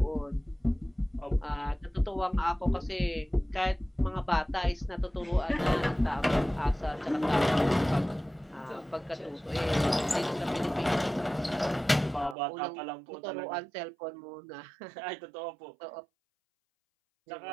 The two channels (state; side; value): drops out; left; at 12.4 s